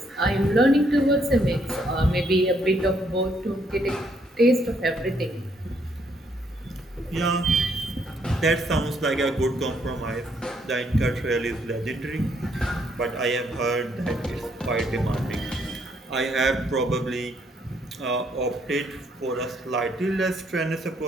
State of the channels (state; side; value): normal; both; correlation 0.71